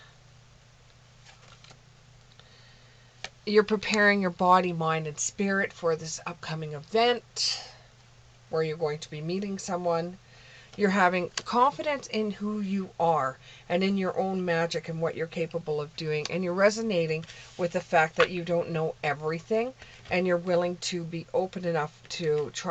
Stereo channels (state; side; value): identical; both; correlation 1.00